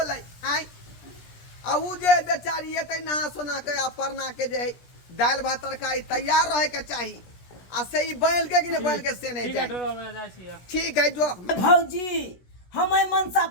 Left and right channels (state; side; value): late; right; 17 ms